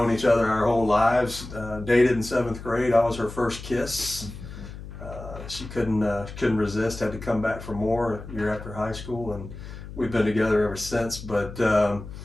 each other our whole lives. Dated in 7th grade. I was her first kiss. She couldn't resist, had to come back for more a year after high school, and we've been together ever since. But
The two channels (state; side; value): noise; left; hum, 12 dB below the sound